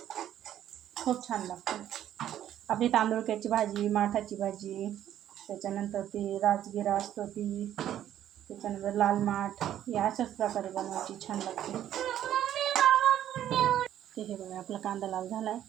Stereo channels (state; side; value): quieter; left; 11.3 dB